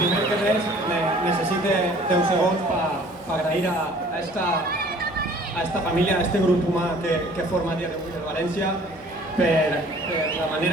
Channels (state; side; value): normal; both; correlation 0.53